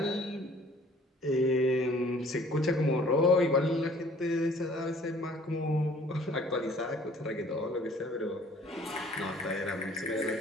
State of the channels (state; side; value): normal; both; correlation 0.55